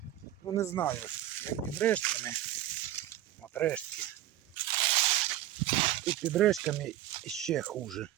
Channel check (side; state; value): left; quieter; 13.1 dB